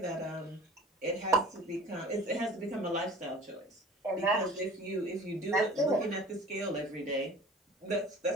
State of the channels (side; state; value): both; normal; correlation 0.44